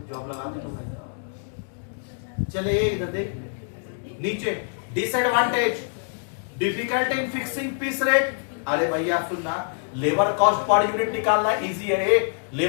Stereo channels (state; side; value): silent; right; digital silence